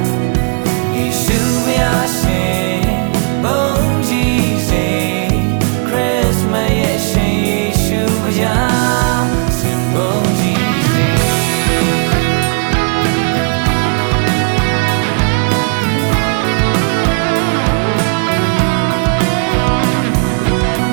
ယေရှုဘုရားရှင်ဘုန်းကြီးစေခရစ်မတ်ရဲ့ရှင်ယေရှုဘုရားစင်ဘုန်းကြီးစေ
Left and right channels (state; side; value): quieter; left; 39.6 dB